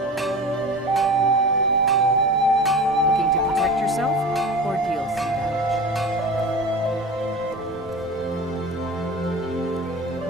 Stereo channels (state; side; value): normal; both; correlation 0.34